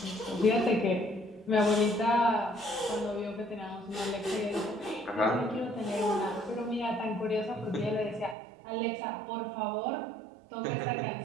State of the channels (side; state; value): left; drops out; at 8.3 s